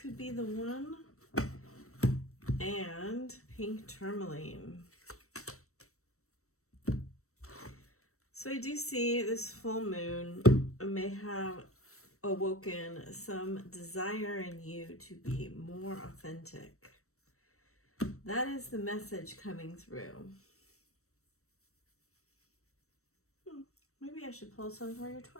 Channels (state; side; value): late; right; 0.64 ms